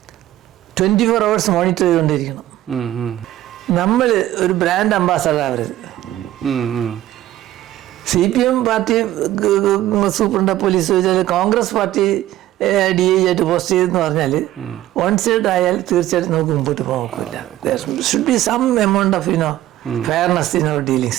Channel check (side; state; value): left; quieter; 14.2 dB